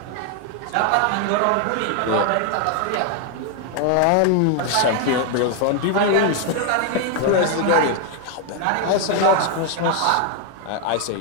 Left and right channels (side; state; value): both; different; correlation 0.00